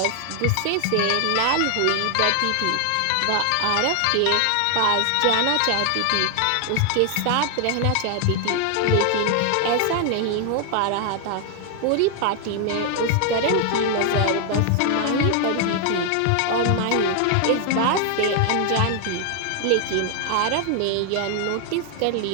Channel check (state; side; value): different; both; correlation 0.00